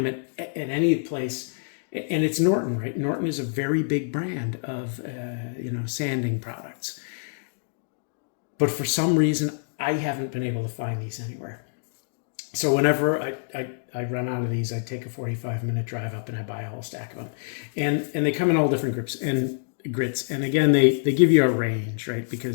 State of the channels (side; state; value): right; silent; digital silence